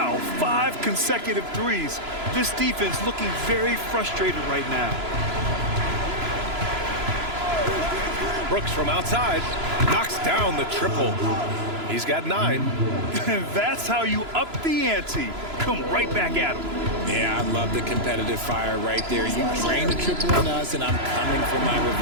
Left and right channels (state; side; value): late; left; 3.0 ms